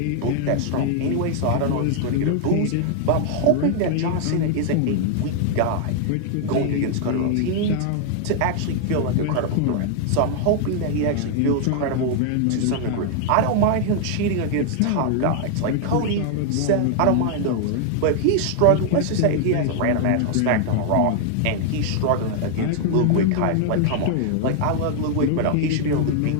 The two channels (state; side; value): different; both; correlation 0.00